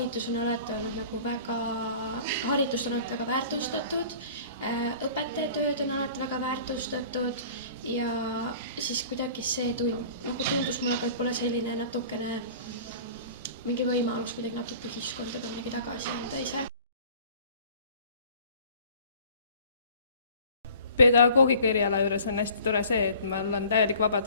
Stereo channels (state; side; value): inverted; both; correlation -0.48